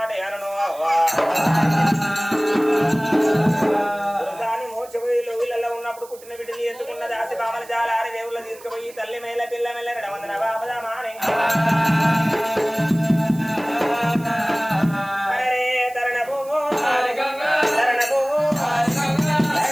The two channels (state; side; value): noise; right; hiss, 21 dB below the sound